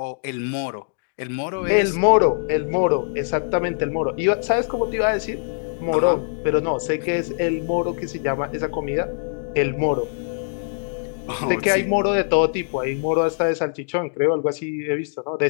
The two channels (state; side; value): silent; right; digital silence